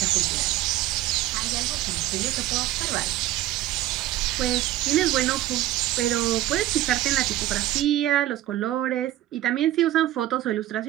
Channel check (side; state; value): left; quieter; 14.6 dB